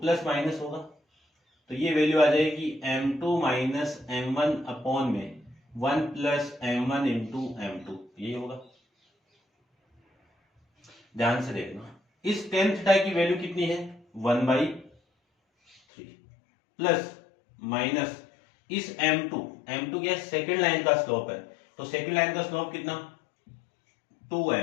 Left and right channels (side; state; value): right; drops out; at 15.8 s